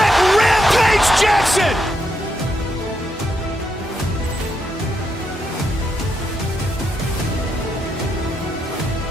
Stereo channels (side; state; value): both; normal; correlation 0.81